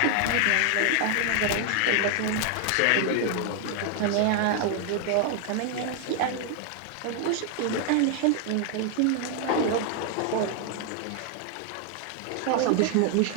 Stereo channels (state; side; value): different; both; correlation 0.00